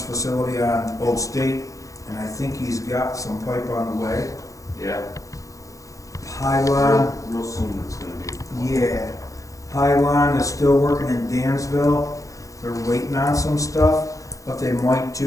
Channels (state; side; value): late; right; 0.16 ms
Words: facility on Old State, and I think he's got some pipe on the way. Yeah. Pylon, Real soon it's gonna be. yeah. Pylon is still working in Dansville. They're waiting on some stuff. What they might